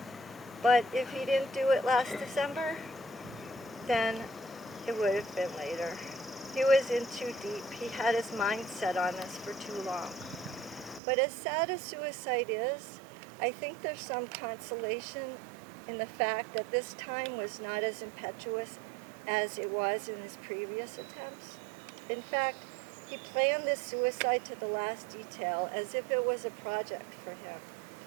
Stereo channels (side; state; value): left; drops out; at 11.0 s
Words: But if he didn't do it last December, then it would have been later. He was in too deep. He had his mind set on us for too long. But as sad as suicide is, I think there's some consolation in the fact that this time was not as impetuous as it was in his previous attempts. In fact, he planned this suicide to the last detail as if it was a project for him.